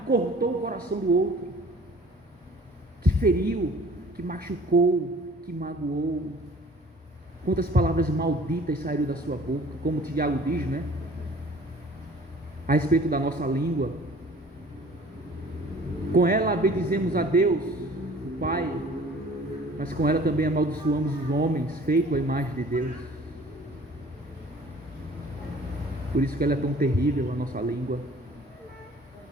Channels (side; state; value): both; normal; correlation 0.50